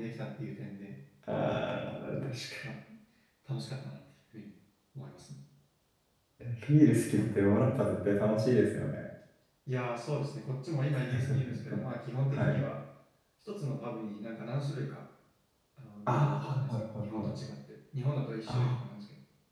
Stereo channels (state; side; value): identical; both; correlation 1.00